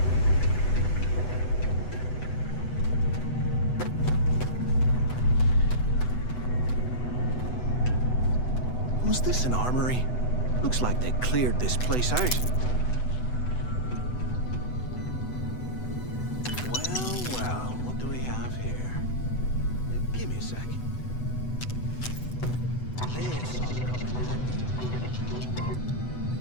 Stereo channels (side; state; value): right; late; 8.0 ms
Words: Was this an armory? Looks like they cleared this place out. Well, what do we have here? Give me a sec. This ought to come in handy.